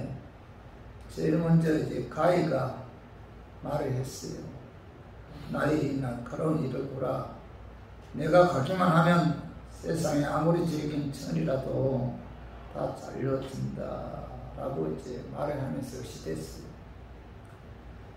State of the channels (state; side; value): identical; both; correlation 1.00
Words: 제일 먼저 가위가 말을 했어요. 나의 날카로운 이를 보라. 내가 가기만 하면 세상에 아무리 질긴 천이라도 다 잘려준다 라고 말을 하면서 시댔어요.